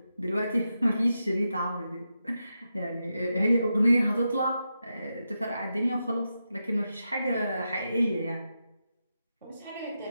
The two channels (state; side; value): inverted; both; correlation -0.88